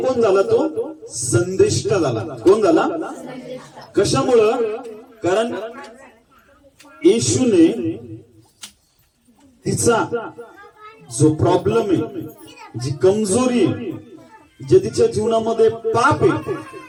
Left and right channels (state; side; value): identical; both; correlation 1.00